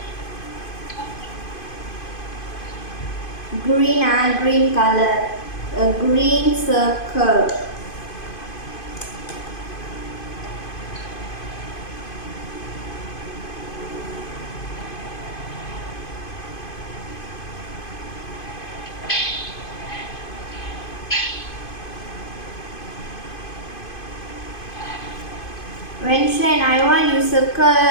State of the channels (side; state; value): right; late; 2.5 ms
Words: green green color, a green circle. Wenxuan, I want you circle